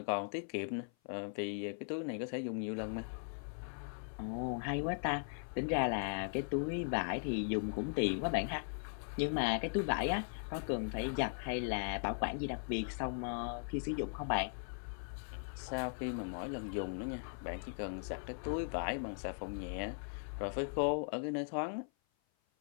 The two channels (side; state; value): right; silent; 52 dB below the other